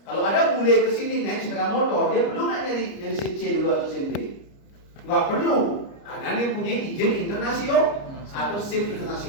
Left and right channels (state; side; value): late; right; 29 ms